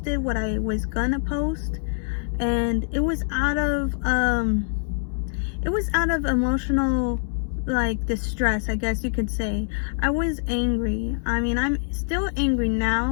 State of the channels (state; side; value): silent; right; 62 dB below the other